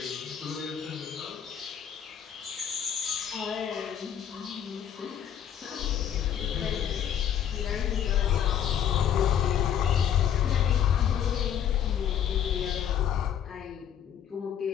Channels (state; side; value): quieter; right; 9.3 dB